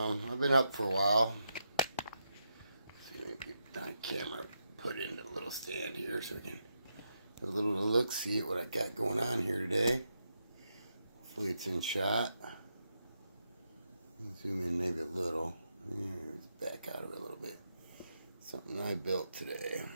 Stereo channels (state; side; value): inverted; both; correlation -0.83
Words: been up for a while. See if I can get my camera put into a little stand here so we can have a little look, see at what I got going on here today. Hopefully it's in shot. Zoom in maybe a little. Back out of it a little bit. Something I built today.